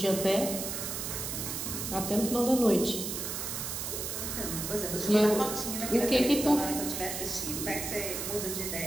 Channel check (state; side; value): noise; right; hiss, 4 dB below the sound